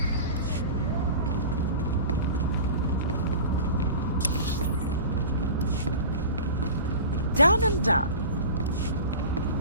Done and done.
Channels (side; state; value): both; inverted; correlation -0.35